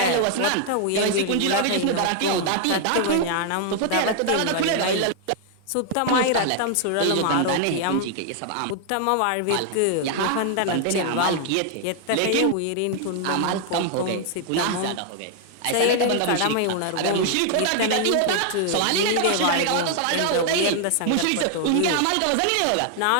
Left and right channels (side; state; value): both; different; correlation 0.00